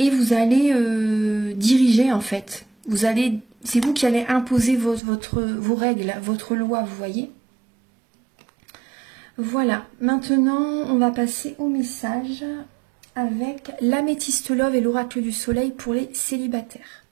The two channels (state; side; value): drops out; left; at 5.0 s